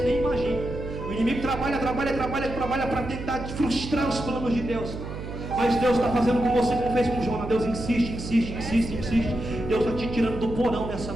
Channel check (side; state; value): right; noise; hum, 8 dB below the sound